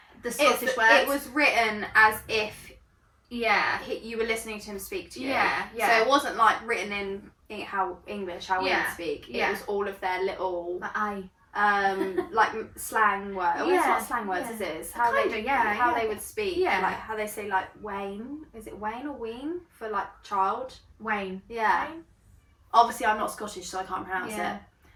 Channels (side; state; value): both; identical; correlation 1.00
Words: the Scottish words. It was written as if you were listening to him speak to you. Yeah. So it wasn't like written in how we would speak. It was all of their little like slang words. Well, it's not slang words, is it? It's how they would speak. Yeah. Like how they say like Wayne. Is it Wayne or Ween for like child? Wayne. Yeah. Wayne? Obviously I'm not Scottish, so I can't pronounce it.